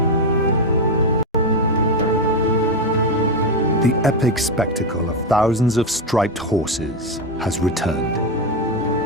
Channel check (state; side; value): normal; both; correlation 0.09